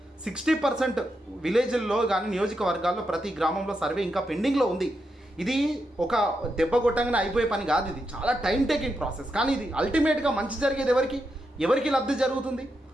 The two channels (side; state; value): both; normal; correlation 0.84